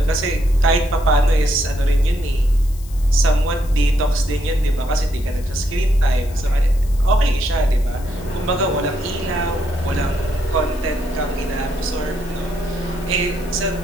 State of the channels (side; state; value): left; noise; hiss, 21 dB below the sound